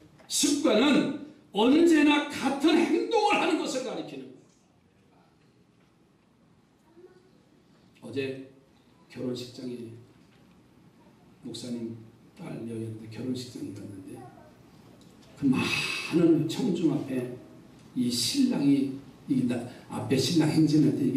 습관은 언제나 같은 행동을 하는 것을 가리키는 거예요. 어제 결혼식장에 목사님 딸 여였는데 결혼식장에 갔는데 그 많은 청중 앞에 이 신랑이 앞에 신랑 행진할 때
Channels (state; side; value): identical; both; correlation 1.00